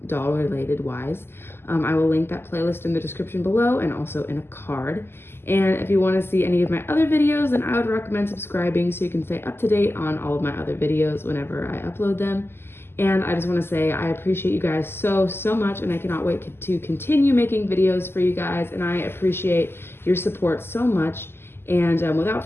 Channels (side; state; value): right; late; 0.11 ms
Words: doll related wise, I will link that playlist in the description below and also in a card. And if you want to see any of my other videos, then I would recommend subscribing so you can stay up to date on all of my other videos whenever I upload them. And I just want to say I appreciate you guys so much, and I cannot wait to continue making videos for you guys, and I appreciate your support so much. And without